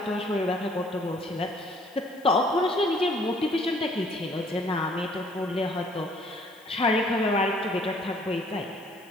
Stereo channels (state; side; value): noise; left; hiss, 27 dB below the sound